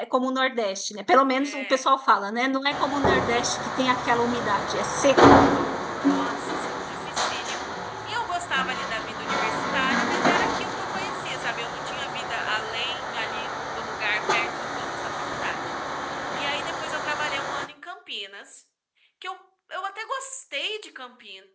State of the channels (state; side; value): identical; both; correlation 1.00